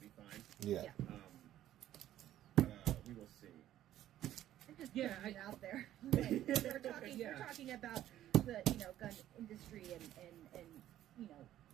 fine. Yeah. But we will see. I'm just putting it out there. We're talking about the gun industry and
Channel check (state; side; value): quieter; left; 12.7 dB